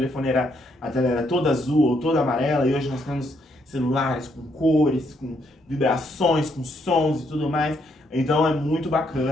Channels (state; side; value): normal; both; correlation 0.74